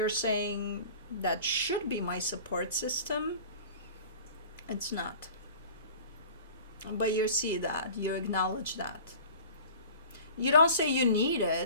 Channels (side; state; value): both; inverted; correlation -0.43